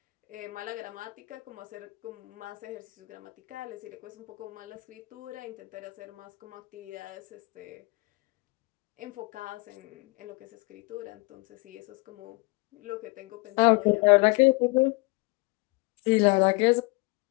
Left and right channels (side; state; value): right; quieter; 26.8 dB